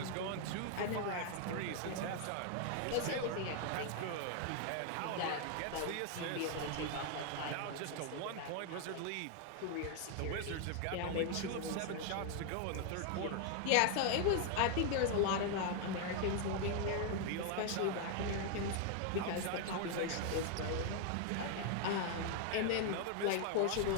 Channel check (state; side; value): different; both; correlation 0.00